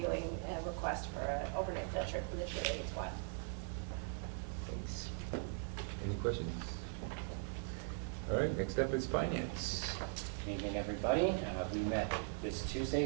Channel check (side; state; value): left; silent; 51 dB below the other